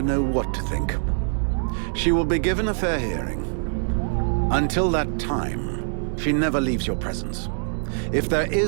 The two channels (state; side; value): silent; left; digital silence